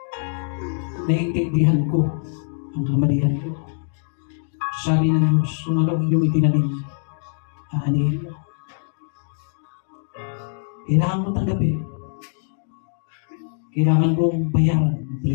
naiintindihan ko ang kamalian ko. Sabi ng Diyos, kung ano ang iyong itinanim, aanihin mo. Kailangan ko tanggapin. Kailangan kong bayaran ang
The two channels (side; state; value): right; silent; digital silence